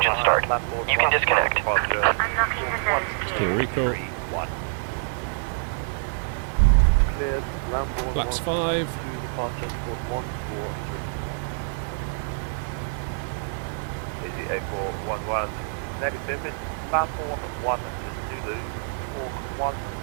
start. You can disconnect. Unlocking the nose Clear gear. recall. Flaps 5. Easy 8411 negative, it's Lambourne 1 Zulu, Hawk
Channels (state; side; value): silent; left; digital silence